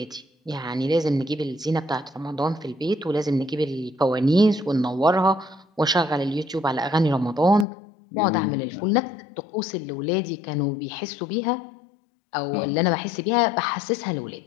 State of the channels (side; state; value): right; drops out; at 7.7 s